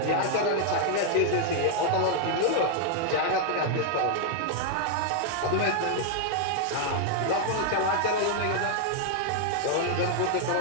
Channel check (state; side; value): different; both; correlation 0.00